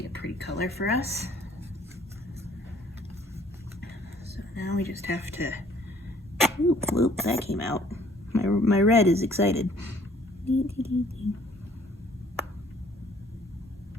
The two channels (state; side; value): normal; both; correlation 0.58